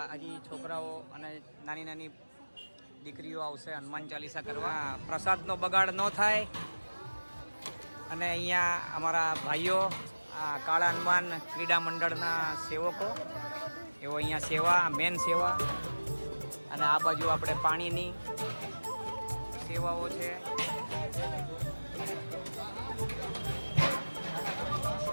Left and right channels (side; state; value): both; inverted; correlation -1.00